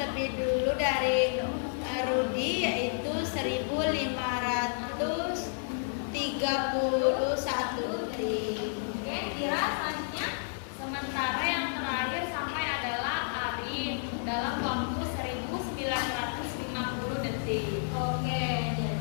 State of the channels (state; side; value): silent; right; digital silence